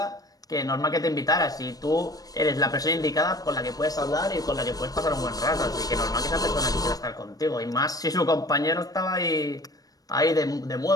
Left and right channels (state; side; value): late; right; 0.18 ms